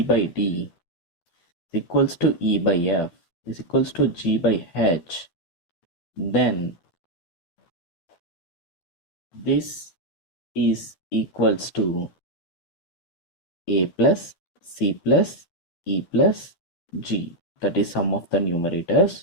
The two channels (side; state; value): right; late; 12 ms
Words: D is equals to E by F is equals to G by H, then this is equals to A plus C plus E plus G, that is sum of the